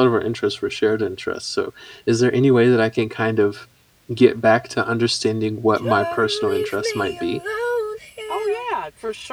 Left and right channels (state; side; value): identical; both; correlation 1.00